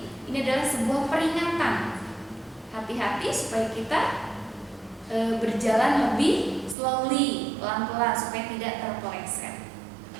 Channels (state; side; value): drops out; left; at 6.8 s